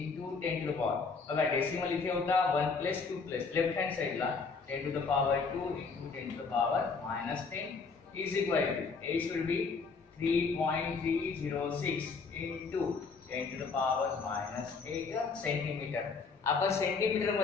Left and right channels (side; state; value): right; quieter; 4.8 dB